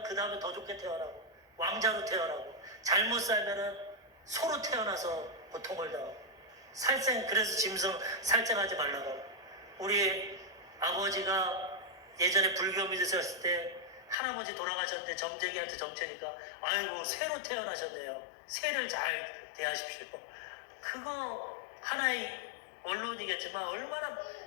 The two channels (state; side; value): drops out; right; at 14.2 s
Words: 그 다음에 더 좋게 태어나고 왕자로 태어나고, 잘못 살면은 소로 태어나서 고통을 당하고, 그래서 짐승 살생하지 말라고 하고. 우리 아버지가 예전에 불교 믿으셨을 때 할아버지 돌아가셨는데 점쟁이한테 점채니까 아이고 새로 태어나셨네요, 새를 잘 대하십시오. 그거 하나의 원론이겠지만 얼마나